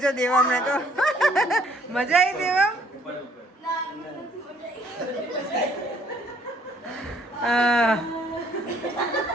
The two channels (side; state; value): both; normal; correlation 0.63